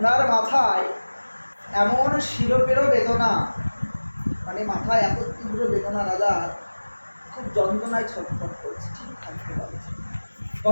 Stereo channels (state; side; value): inverted; both; correlation -1.00